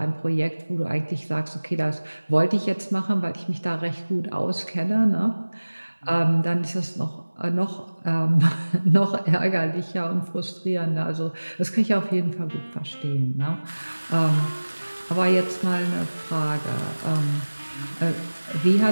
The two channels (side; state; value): both; inverted; correlation -1.00